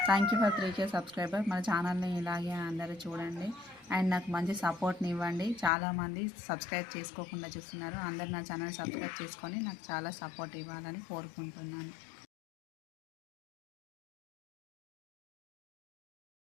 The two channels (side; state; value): right; drops out; at 5.7 s